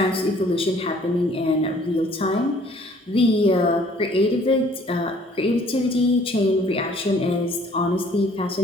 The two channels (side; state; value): both; normal; correlation 0.57